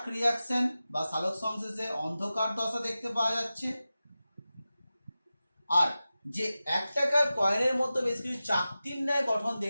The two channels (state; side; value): inverted; both; correlation -0.95